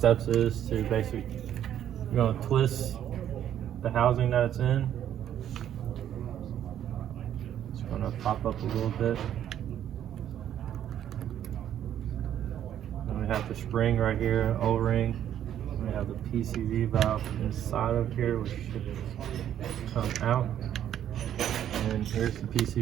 is to we're going to twist the housing that it's in. It's going to pop up a little bit. And we have the spring right here, O-ring. We have the PCV valve inside of here, which should come out. And here's the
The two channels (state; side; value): quieter; left; 10.5 dB